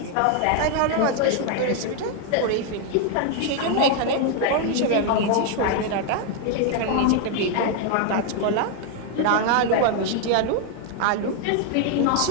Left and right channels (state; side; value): different; both; correlation 0.01